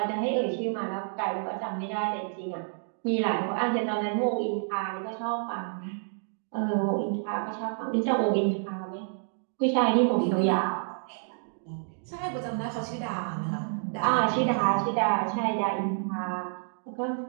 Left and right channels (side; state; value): left; silent; digital silence